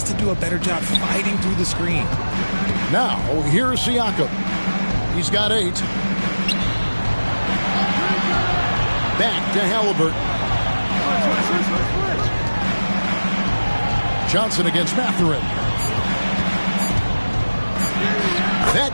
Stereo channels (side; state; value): both; inverted; correlation -1.00